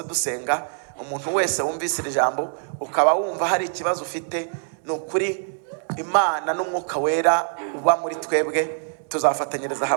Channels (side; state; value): left; silent; 60 dB below the other